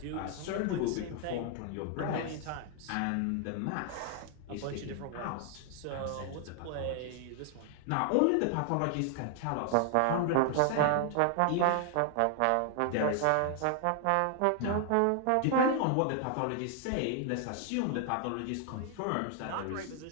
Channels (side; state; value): both; different; correlation 0.00